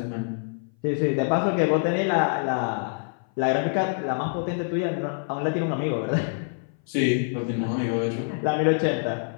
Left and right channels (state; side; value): silent; right; 58 dB below the other